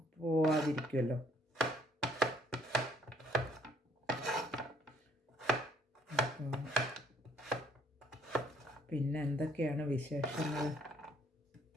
പോവാതിരിക്കുമല്ലോ. പിന്നെ എന്തൊക്കെയാണ് വിശേഷങ്ങൾ?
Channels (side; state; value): both; normal; correlation 0.64